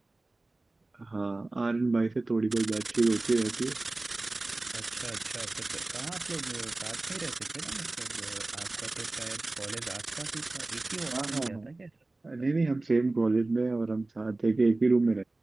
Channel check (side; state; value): left; quieter; 3.0 dB